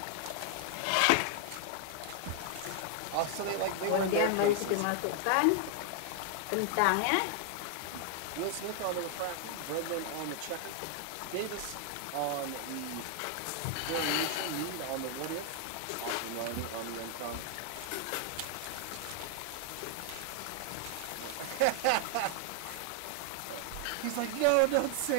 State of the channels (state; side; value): different; both; correlation 0.00